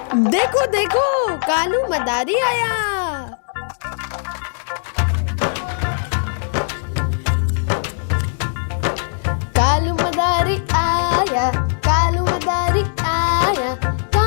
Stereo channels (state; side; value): silent; right; 66 dB below the other